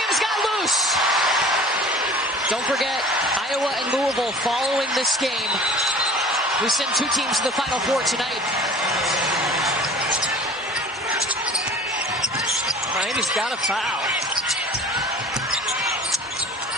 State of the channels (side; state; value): both; normal; correlation 0.43